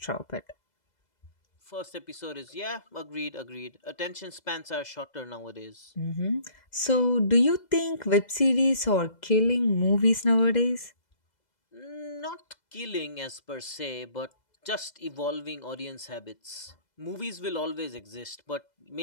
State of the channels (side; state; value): right; late; 2.0 ms